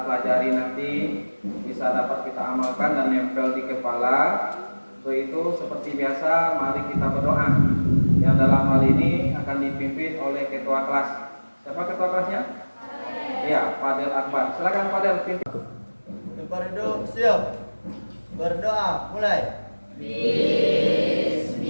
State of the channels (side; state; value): both; inverted; correlation -1.00